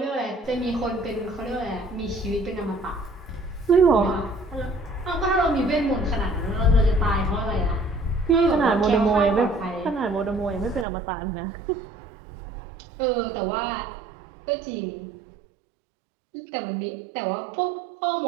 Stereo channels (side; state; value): left; drops out; at 10.9 s